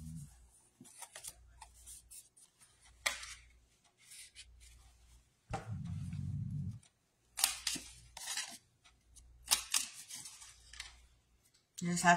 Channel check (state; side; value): identical; both; correlation 1.00